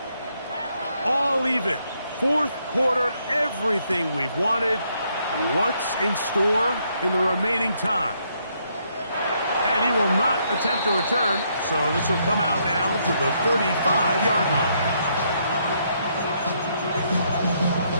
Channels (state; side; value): inverted; both; correlation -0.73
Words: All even. Fourth quarter, everything we've wanted. What's in store in the remaining time? And he will not attempt to return, so this will come out now to the 35-yard line.